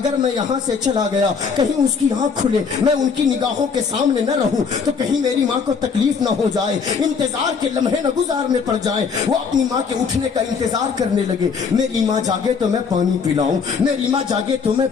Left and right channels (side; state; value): right; quieter; 5.7 dB